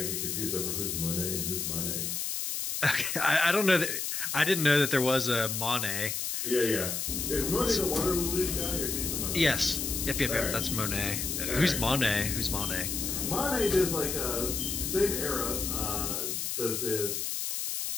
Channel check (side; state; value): left; noise; hiss, 2 dB below the sound